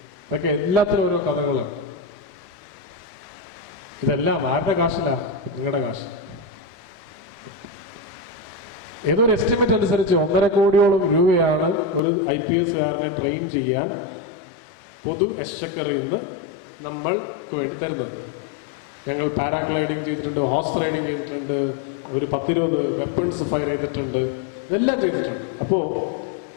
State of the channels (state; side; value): drops out; right; at 12.0 s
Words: ഇതൊക്കെ എല്ലാത്തിനും ഓരോ കഥകളാണ്. ഇതെല്ലാം ആരുടെ കാശിലാ? നിങ്ങളുടെ കാശ്. ഏതോ ഒരു എസ്റ്റിമേറ്റ് അനുസരിച്ച് 1.5 കോടിയോളം രൂപയാണ് ഒരു IPSകാരനെ ട്രെയിൻ ചെയ്യാൻ പൊതു എക്സ്ചക്കറിൽ നിന്ന് നമ്മൾക്ക് വേണ്ടി തരുന്നത്. ഞങ്ങൾ പാരാഗ്ലൈഡിങ് ചെയ്തിട്ടുണ്ട്, ഹോഴ്സ് റൈഡിങ് ചെയ്തിട്ടുണ്ട്, ഒരു 10-20 വെപ്പൺസ് ഫയർ ചെയ്തിട്ടുണ്ട്, ഇതെല്ലാം ചെയ്തിട്ടുണ്ട്. അപ്പോൾ